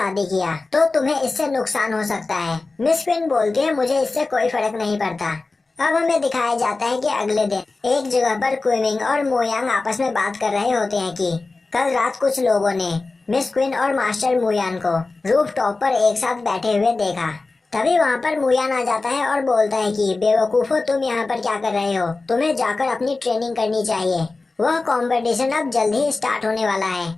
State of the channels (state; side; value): quieter; right; 3.6 dB